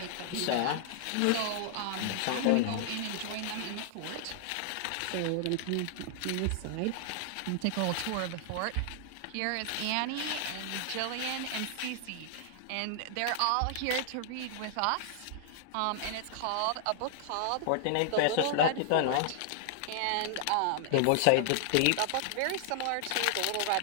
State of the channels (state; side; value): different; both; correlation -0.01